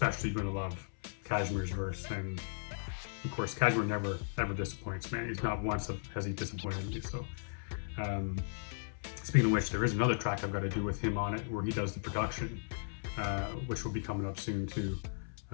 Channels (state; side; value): silent; right; 54 dB below the other